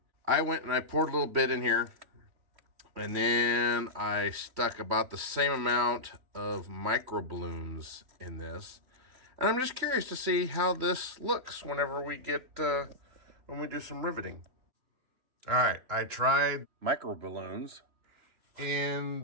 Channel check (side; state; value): left; late; 3.1 ms